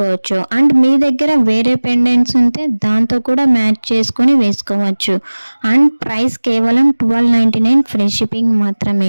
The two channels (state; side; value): inverted; both; correlation -1.00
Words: అండ్ మీ దగ్గర వేరే పెండెంట్స్ ఉంటే దాంతో కూడా మ్యాచ్ చేసుకొని వేసుకోవచ్చు. అండ్ ప్రైస్ కేవలం 1299 ఫ్రీ షిప్పింగ్